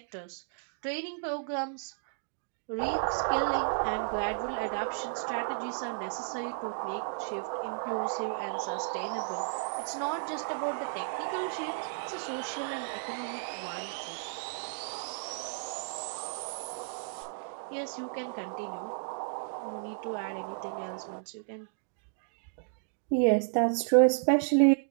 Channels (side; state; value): left; silent; digital silence